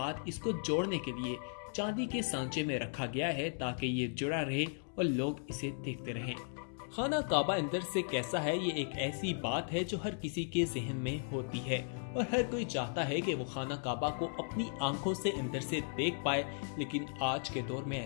اس کو جوڑنے کے لیے چاندی کے سانچے میں رکھا گیا ہے تاکہ یہ جڑا رہے اور لوگ اسے دیکھتے رہیں۔ خانہ کعبہ اندر سے کیسا ہے، یہ ایک ایسی بات ہے جو ہر کسی کے ذہن میں ہوتی ہے اور ہر کوئی چاہتا ہے کہ وہ خانہ کعبہ کو اپنی آنکھوں سے اندر سے دیکھ پائے، لیکن آج کے دور میں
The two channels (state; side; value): silent; right; digital silence